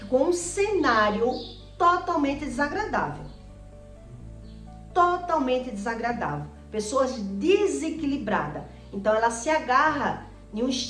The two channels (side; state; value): both; identical; correlation 1.00